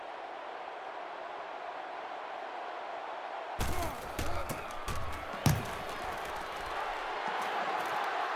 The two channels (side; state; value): both; identical; correlation 1.00